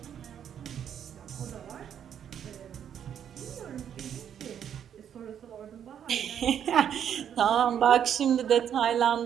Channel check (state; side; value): quieter; left; 9.0 dB